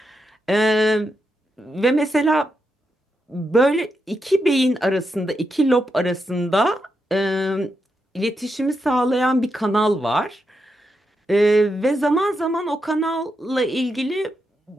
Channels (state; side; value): normal; both; correlation 0.84